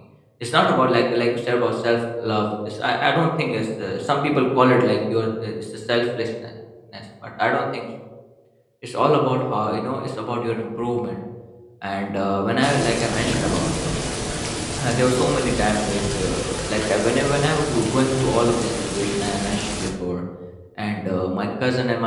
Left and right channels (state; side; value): identical; both; correlation 1.00